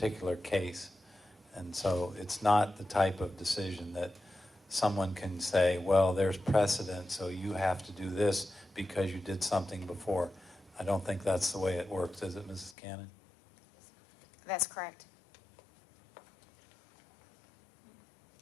case. And so it's not the type of decision that someone can say, well, there's precedent, so you have to do this because you did something before. I don't think that's the way it works, is it, Mrs. Cannon? That's correct.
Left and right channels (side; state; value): right; drops out; at 12.8 s